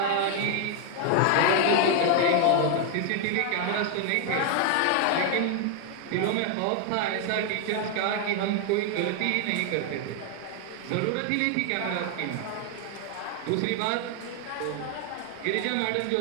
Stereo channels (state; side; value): different; both; correlation 0.00